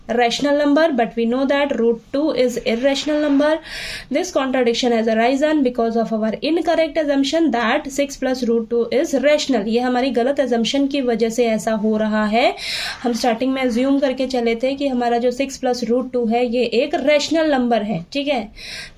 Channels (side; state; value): both; identical; correlation 1.00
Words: rational number, but we know that √2 is irrational number. This contradiction has arisen because of our incorrect assumption that 6 + √2 is rational. ये हमारी गलत assumption की वजह से ऐसा हो रहा है। हम स्टार्टिंग में assume करके चले थे कि हमारा जो 6 + √2 है ये एक rational number है, ठीक है।